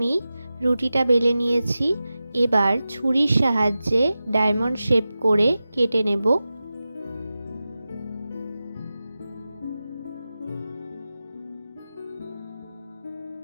রুটিটা বেলে নিয়েছি। এবার ছুরির সাহায্যে ডায়মন্ড শেপ করে কেটে নেব।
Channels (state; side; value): inverted; both; correlation -0.94